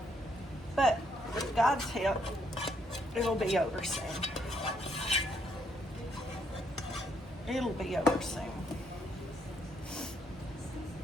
But with God's help, it'll be over soon. It'll be over soon.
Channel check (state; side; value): normal; both; correlation 0.73